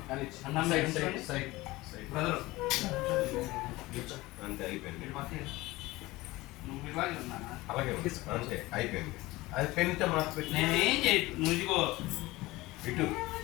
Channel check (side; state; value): right; quieter; 19.8 dB